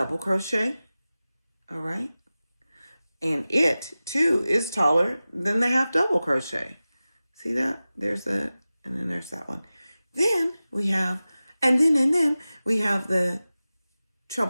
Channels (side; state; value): both; inverted; correlation -0.96